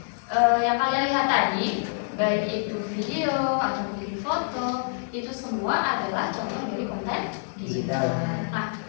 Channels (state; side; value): silent; right; digital silence